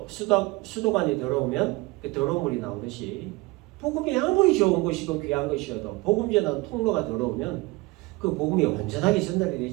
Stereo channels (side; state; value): left; quieter; 22.7 dB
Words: 수도관이 더러우면 그 더러운 물이 나오듯이 복음이 아무리 좋은 것이고 귀한 것이어도 복음 전하는 통로가 더러우면 그 복음이 온전하게 전달이